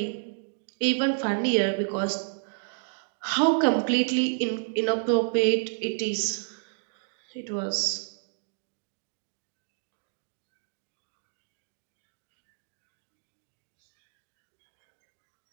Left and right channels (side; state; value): left; silent; digital silence